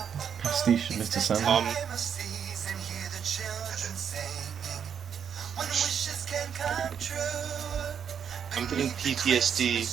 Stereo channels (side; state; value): left; quieter; 7.8 dB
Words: pastiche of Mr. Sandman. I'm getting